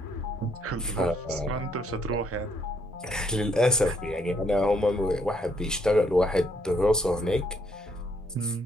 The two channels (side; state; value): both; normal; correlation 0.71